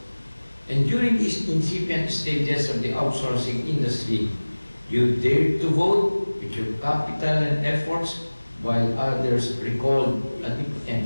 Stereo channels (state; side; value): inverted; both; correlation -1.00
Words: And during these incipient stages of the outsourcing industry, you dared to vote with your capital and efforts, while others recalled at the